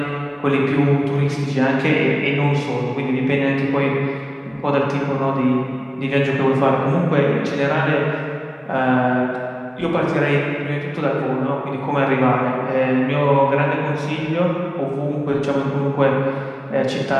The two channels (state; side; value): identical; both; correlation 1.00